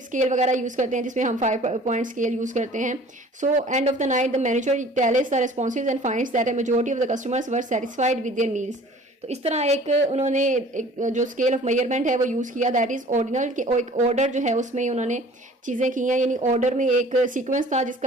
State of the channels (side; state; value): both; normal; correlation 0.48